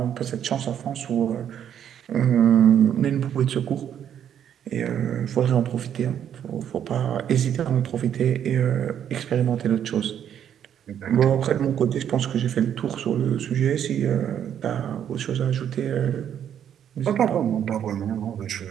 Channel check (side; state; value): left; quieter; 9.4 dB